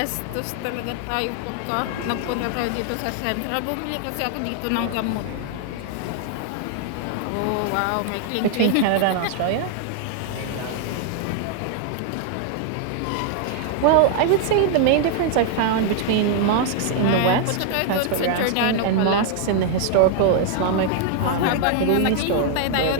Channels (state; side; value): different; both; correlation 0.00